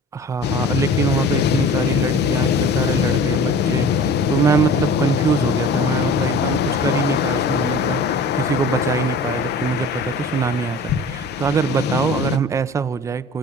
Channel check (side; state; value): both; normal; correlation 0.42